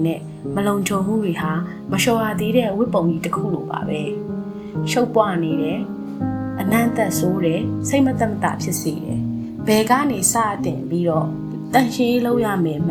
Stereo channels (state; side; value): identical; both; correlation 1.00